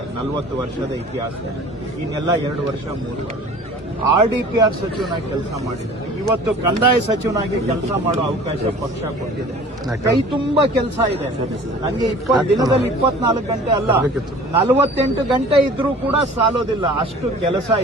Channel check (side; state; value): both; normal; correlation 0.45